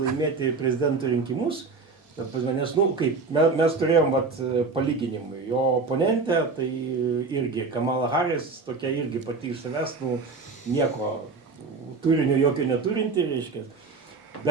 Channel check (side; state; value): left; quieter; 4.2 dB